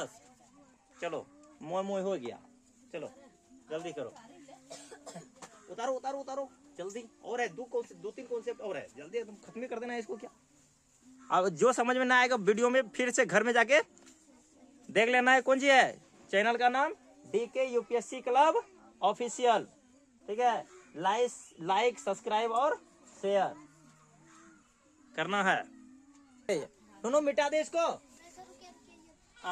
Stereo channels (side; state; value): both; identical; correlation 1.00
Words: चलो मोह मोह हो गया, चलो जल्दी करो, उतारो उतारो उतारो जल्दी, और है 2-3 कॉन्सेप्ट और है, जल्दी एकदम खत्म कर देना है इसको। क्या अब जो समझ में ना आएगा वीडियो में फिर से घर में जाके देख लेना है। कौन सी है, चैनल का नाम DK UPSC क्लब ऑफिशियल, ठीक है। लाइक सब्सक्राइब और शेयर करना है। दोनों मिटा दे इसको,